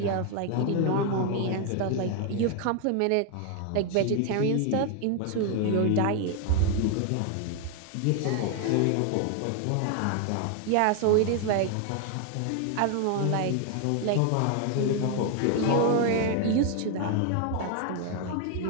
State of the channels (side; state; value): both; different; correlation 0.01